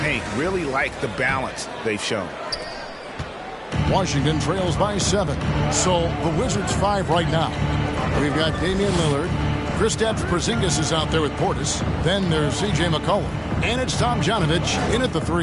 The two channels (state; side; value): identical; both; correlation 1.00